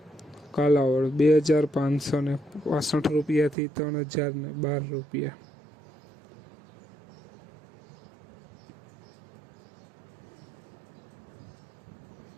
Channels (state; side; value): drops out; left; at 3.6 s